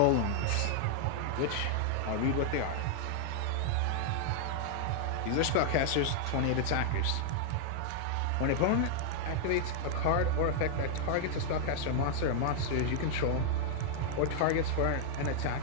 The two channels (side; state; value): both; different; correlation 0.00